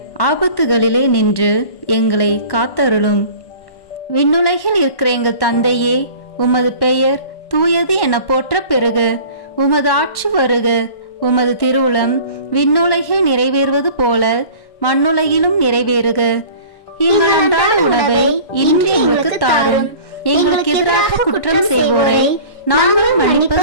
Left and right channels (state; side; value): late; right; 1.1 ms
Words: ஆபத்துகளிலே நின்று எங்களை காத்தருளும். விண்ணுலகில் இருக்கிற எங்கள் தந்தையே, உமது பெயர் தூயது என போற்ற பெறுக. உமது ஆட்சி வருக. உமது திருவுளம் விண்ணுலகில் நிறைவேறுவது போல மண்ணுலகிலும் நிறைவேறுக. எங்கள் அன்றாட உணவை இன்று எங்களுக்கு தாரும். எங்களுக்கு எதிராக குற்றம் செய்வோரை நாங்கள்